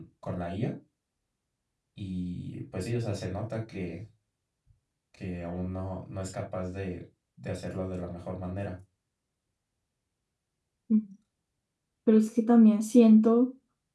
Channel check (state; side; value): identical; both; correlation 1.00